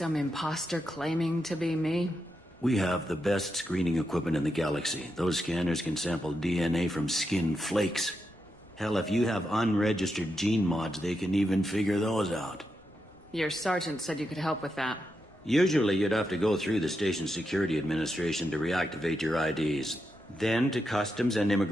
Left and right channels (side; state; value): both; normal; correlation 0.85